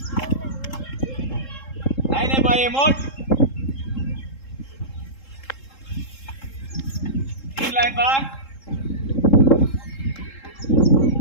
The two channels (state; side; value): late; right; 3.7 ms